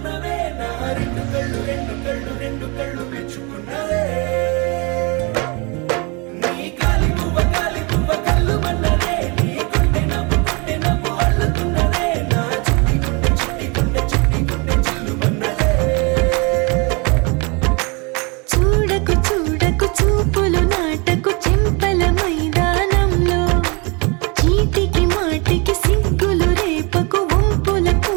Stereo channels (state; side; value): quieter; left; 30.4 dB